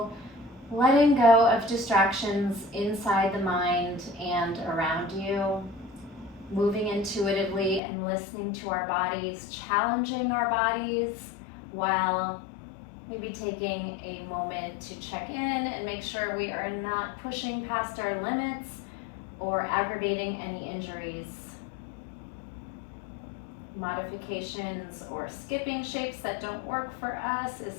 letting go of distractions inside the mind and around you, moving intuitively and listening to our bodies, challenging our bodies while maybe taking a moment to check in and make sure we are not pushing past our limits or aggravating any injuries. Modifications or skipping shapes that don't work for us is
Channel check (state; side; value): drops out; right; at 7.8 s